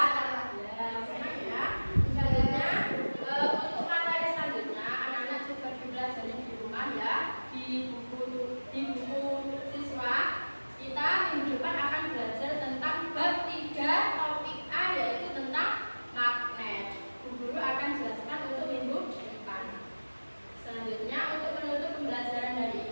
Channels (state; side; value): inverted; both; correlation -1.00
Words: Di buku siswa kita minggu depan akan belajar tentang bab 3 topik A, yaitu tentang magnet. Guru akan jelaskan untuk minggu depan. Selanjutnya untuk menutup pembelajaran hari